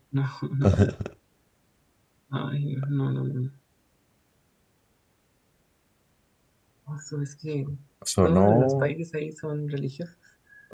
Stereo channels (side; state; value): both; identical; correlation 1.00